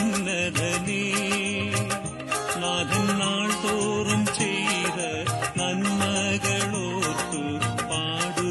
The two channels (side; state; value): both; identical; correlation 1.00